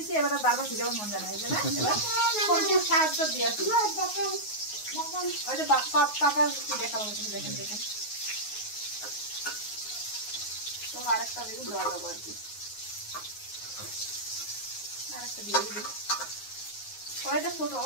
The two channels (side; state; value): right; late; 9.5 ms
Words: এবার বারবার ভিজাবার মন জানা এই জন্য সাহায্য দিয়ে আসি ওই যে পাপার কি দেখাবো দেখেন তো আরেকটা বেগুন দেওয়া যাবো আর কি আরেকটা দিয়ে দিবি কড়াইটা ছোট